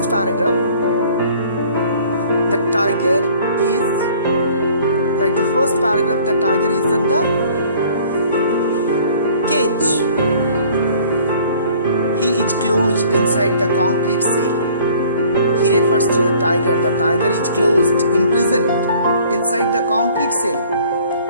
paragraph, the tiger is, like the first paragraph, the tiger is in the cage. He is closed inside the concrete cell. He refers to the tiger. The tiger is closed, imprisoned inside the concrete cell.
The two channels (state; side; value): inverted; both; correlation -0.54